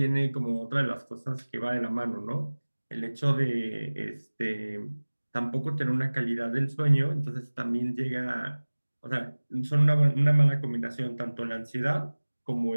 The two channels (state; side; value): inverted; both; correlation -1.00